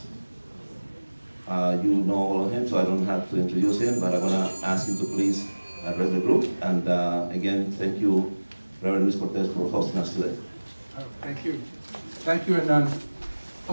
You know all of him, so I don't have to introduce him, but I'm going to ask him to please address the group. And again, thank you, Reverend Luis Cortez, for hosting us today. Thank you. Thank you, and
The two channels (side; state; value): both; inverted; correlation -1.00